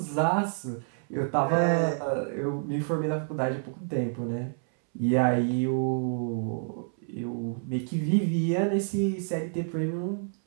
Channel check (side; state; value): left; silent; 59 dB below the other